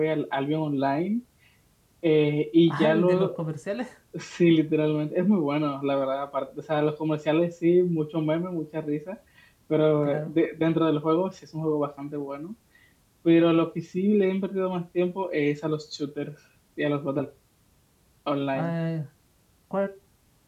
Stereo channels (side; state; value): both; identical; correlation 1.00